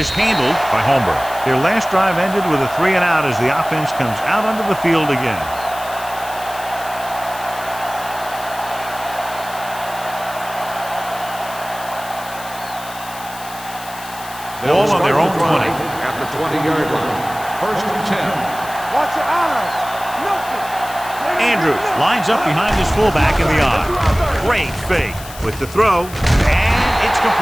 handled by Holmberg. Their last drive ended with a 3-and-out as the offense comes out onto the field again. Ball on their own 20. At the 20-yard line. First and 10. Watch your eyes. Nothing. Andrews lines up behind his fullback in the eye. Great fake with the throw, and it's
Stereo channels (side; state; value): left; noise; hiss, 15 dB below the sound